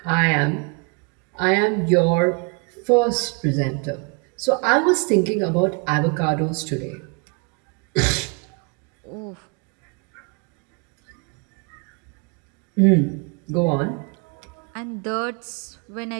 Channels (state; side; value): quieter; left; 33.4 dB